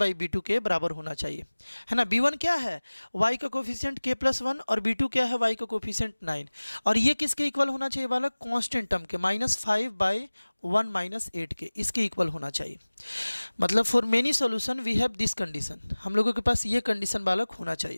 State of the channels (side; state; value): both; inverted; correlation -1.00